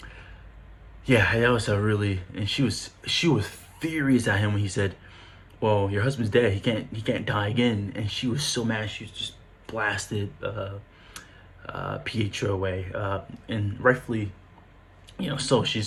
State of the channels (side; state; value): both; identical; correlation 1.00